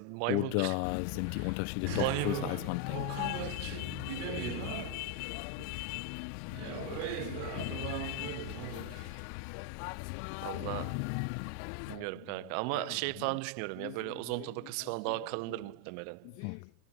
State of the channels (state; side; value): different; both; correlation 0.01